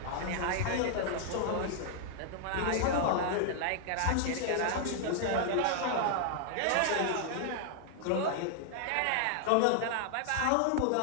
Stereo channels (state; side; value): different; both; correlation -0.01